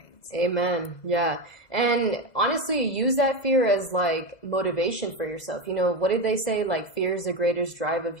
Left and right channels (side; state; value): right; late; 2.0 ms